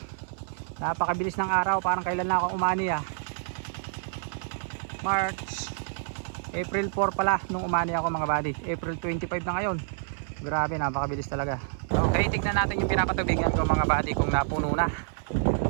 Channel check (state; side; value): silent; left; 59 dB below the other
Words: Napakabilis ng araw, parang kailan na ako umani March, April 4 pala nung umani ako mga buddy. April 25 na ngayon. Grabe, napakabilis talaga. Okay, tignan natin yung pinapatubigan ko mga buddy kung napuno na.